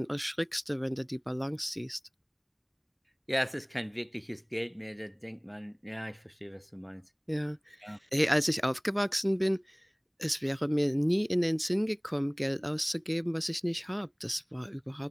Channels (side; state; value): both; identical; correlation 1.00